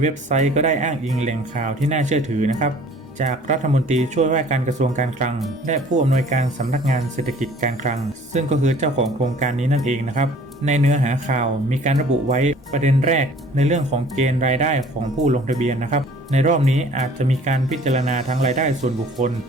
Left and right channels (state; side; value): normal; both; correlation 0.52